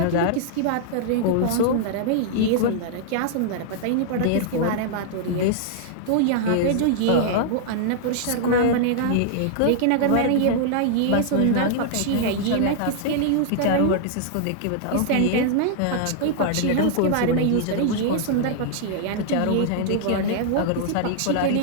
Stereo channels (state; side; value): different; both; correlation -0.01